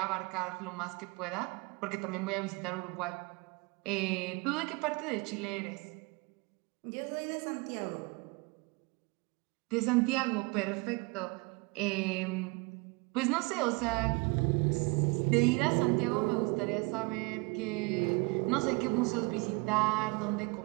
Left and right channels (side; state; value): left; quieter; 28.0 dB